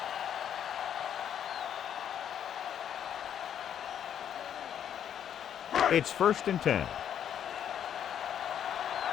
line. It's first and 10.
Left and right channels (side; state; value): right; quieter; 9.3 dB